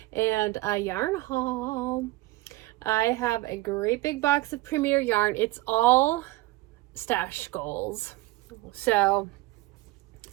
and a yarn haul. I have a great big box of Premier yarn. It's all stash goals. So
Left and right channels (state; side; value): quieter; left; 19.4 dB